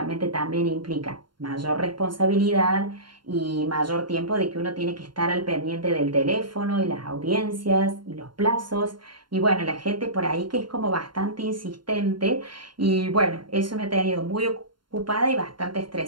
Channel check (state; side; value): late; left; 0.72 ms